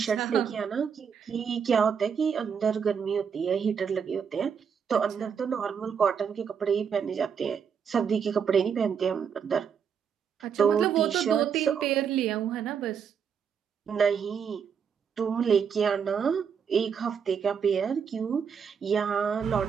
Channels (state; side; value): quieter; left; 7.0 dB